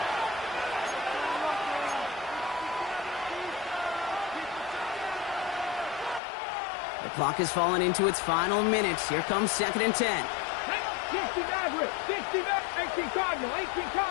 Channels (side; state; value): right; drops out; at 6.2 s